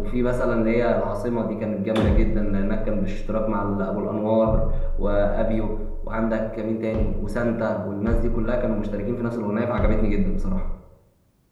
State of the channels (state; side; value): identical; both; correlation 1.00